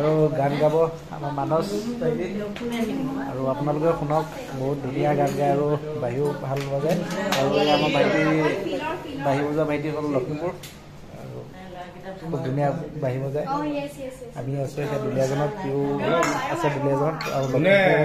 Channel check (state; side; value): identical; both; correlation 1.00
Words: গান গাব আমাৰ মানস ভাইটি। আৰু আপোনালোকে শুনক, বহুত ধুনীয়া গান গায় আৰু বাঁহীও ভাল বজায়। আৰু আমাৰ ভাইটি বাঁহী বজোৱা ভাইটি হ'ল লখিমপুৰ আৰু খুব ধুনীয়া বাঁহী বজায়। আমি আছোঁ এতিয়া দুলীয়াজনত, সিও আছে দুলীয়াজনত আৰু